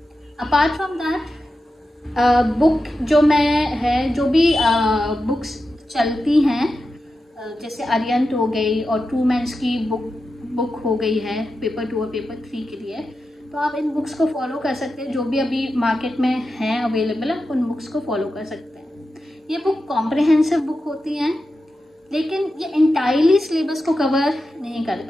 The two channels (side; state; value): both; normal; correlation 0.90